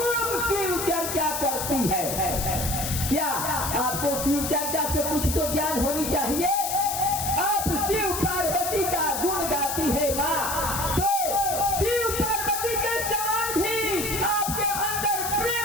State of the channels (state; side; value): noise; left; hiss, 4 dB below the sound